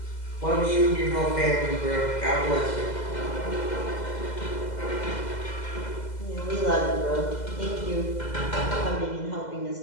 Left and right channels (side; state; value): right; late; 2.0 ms